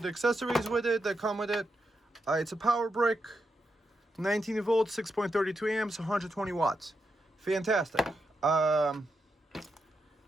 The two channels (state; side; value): normal; both; correlation 0.85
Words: accessories with it that come with it. It's a power brick, 19 volts, 6.32 amps, 120 watts. Fantastic.